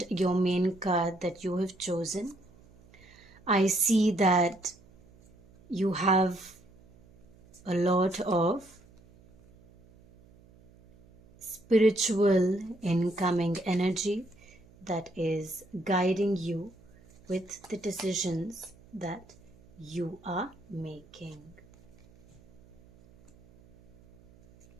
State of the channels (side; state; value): right; noise; hum, 26 dB below the sound